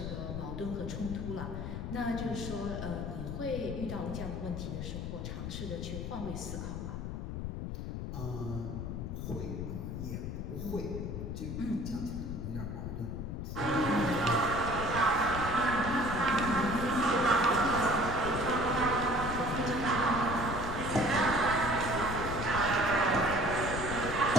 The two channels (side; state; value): left; noise; rumble, 5 dB below the sound